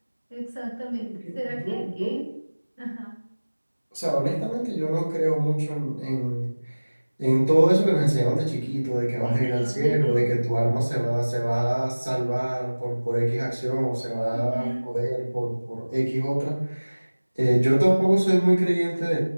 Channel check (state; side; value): inverted; both; correlation -1.00